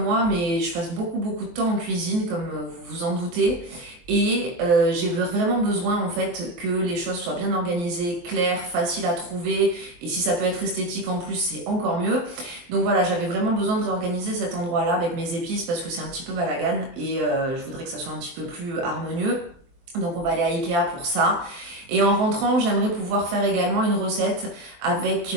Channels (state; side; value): late; left; 23 ms